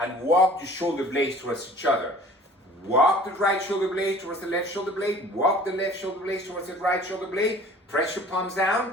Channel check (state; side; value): normal; both; correlation 0.48